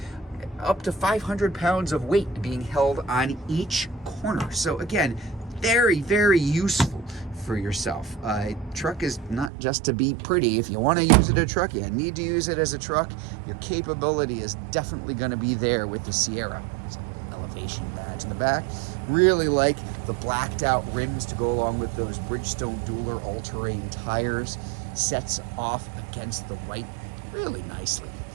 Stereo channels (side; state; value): left; drops out; at 9.5 s